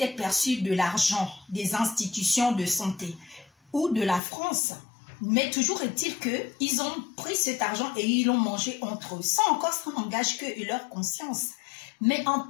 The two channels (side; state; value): right; drops out; at 4.2 s